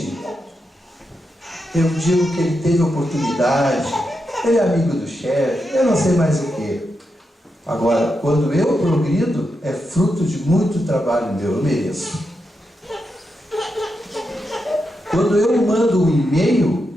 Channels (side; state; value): both; normal; correlation 0.86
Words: eu digo que ele teve oportunidade, ele é amigo do chefe, eu não sei mais o que. Agora, quando eu progrido, é fruto de muito trabalho meu, eu mereço. Quando eu mando um e-mail,